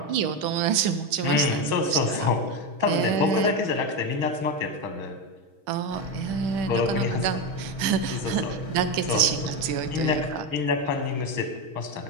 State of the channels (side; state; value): left; late; 6.3 ms